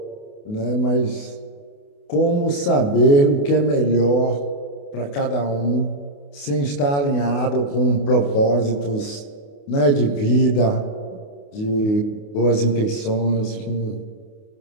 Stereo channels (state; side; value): late; right; 28 ms